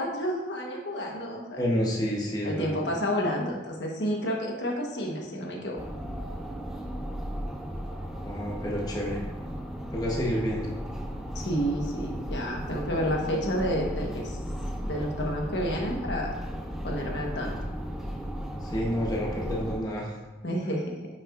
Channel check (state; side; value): normal; both; correlation 0.56